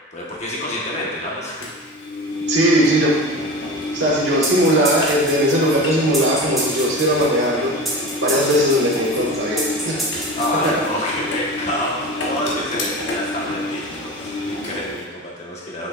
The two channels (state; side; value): normal; both; correlation 0.31